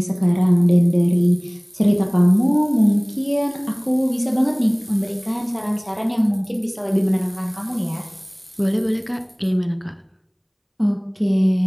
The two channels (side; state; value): both; identical; correlation 1.00